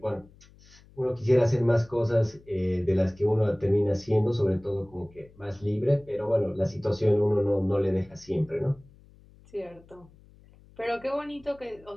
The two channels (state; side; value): noise; left; hum, 26 dB below the sound